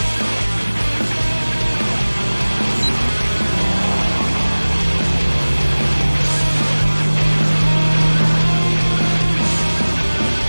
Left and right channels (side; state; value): both; inverted; correlation -1.00